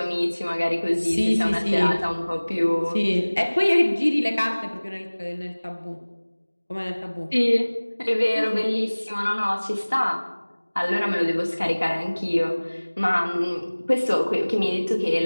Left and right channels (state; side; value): inverted; both; correlation -1.00